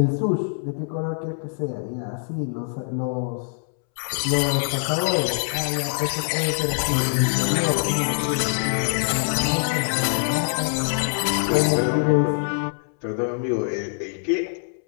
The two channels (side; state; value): right; silent; 63 dB below the other